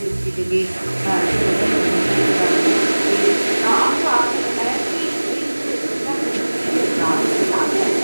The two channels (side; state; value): both; inverted; correlation -1.00